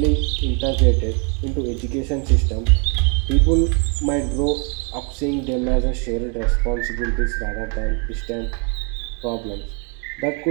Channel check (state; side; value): quieter; left; 37.1 dB